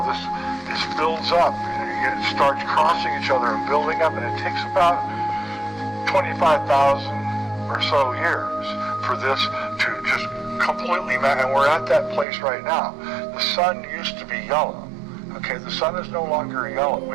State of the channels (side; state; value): left; drops out; at 12.2 s